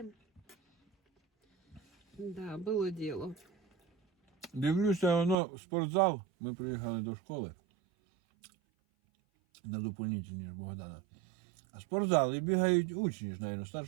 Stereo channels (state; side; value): drops out; left; at 5.4 s